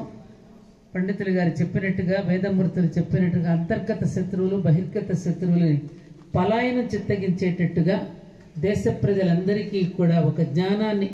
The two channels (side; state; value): both; identical; correlation 1.00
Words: పండితులు గారు చెప్పినట్టుగా, వేదమూర్తులు చెప్పినట్టుగా అంతర్గత శత్రువులు బహిర్గత శత్రువులని పలాయనం చిత్తగించేటట్టుగా దేశ ప్రజలందరికీ కూడా ఒక జ్ఞానాన్ని